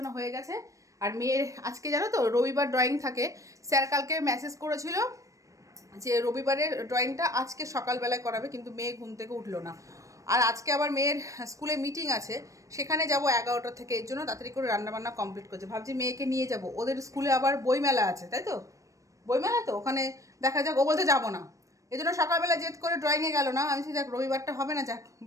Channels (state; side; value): late; left; 0.16 ms